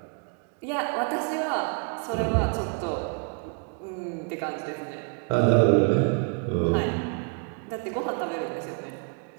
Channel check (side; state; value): left; quieter; 39.2 dB